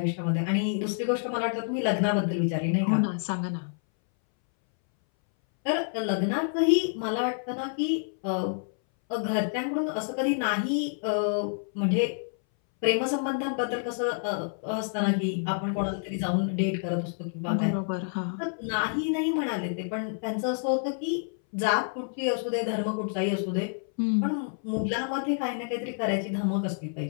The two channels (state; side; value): silent; right; 59 dB below the other